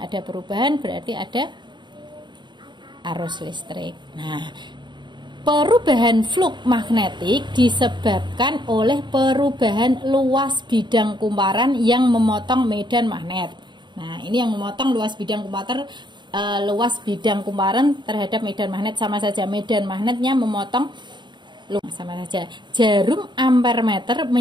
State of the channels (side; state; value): left; late; 0.22 ms